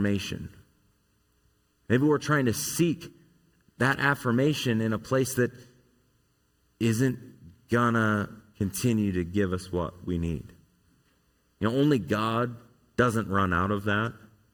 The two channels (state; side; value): identical; both; correlation 1.00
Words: Maybe we're trying to seek that affirmation in a place that isn't gonna continue to give us what we need. Only God doesn't run out of that.